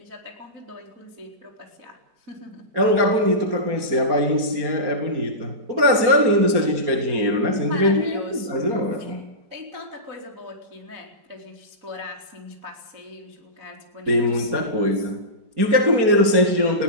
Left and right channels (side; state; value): left; late; 4.3 ms